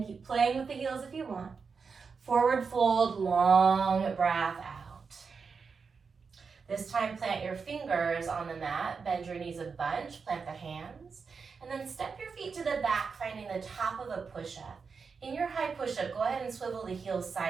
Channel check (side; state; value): left; quieter; 5.3 dB